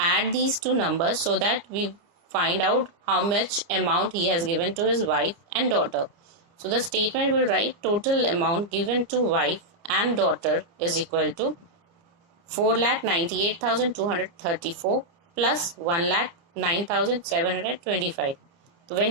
these two numbers so that we find out how much amount he has given to his wife and daughter. So the statement will write total amount given to wife and daughter is equal to 4,98,234 plus 1,09,725. So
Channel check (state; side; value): late; left; 29 ms